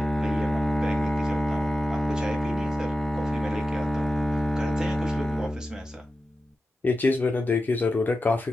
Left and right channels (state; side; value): normal; both; correlation 0.93